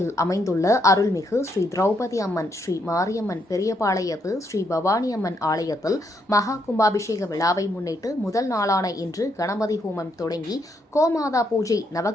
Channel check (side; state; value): both; normal; correlation 0.76